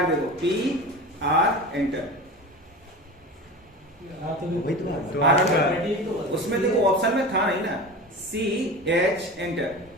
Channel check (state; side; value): normal; both; correlation 0.31